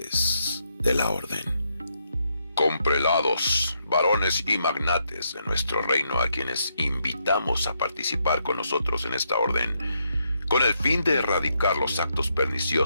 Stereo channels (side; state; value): both; inverted; correlation -0.78